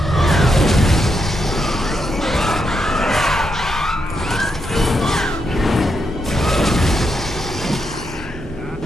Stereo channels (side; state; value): both; normal; correlation 0.82